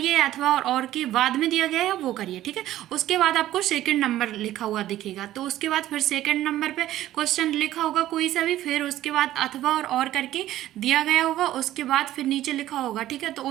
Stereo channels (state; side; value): quieter; left; 13.9 dB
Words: अथवा और के बाद में दिया गया है वो करिए, ठीक है। उसके बाद आपको सेकंड नंबर लिखा हुआ दिखेगा, तो उसके बाद फिर सेकंड नंबर पे क्वेश्चन लिखा होगा कोई सा भी, फिर उसके बाद अथवा और करके दिया गया होगा, उसके बाद फिर नीचे लिखा होगा, ठीक है। तो